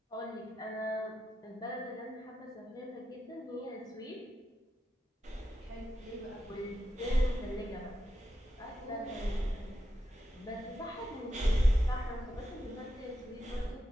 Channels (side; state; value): both; normal; correlation 0.87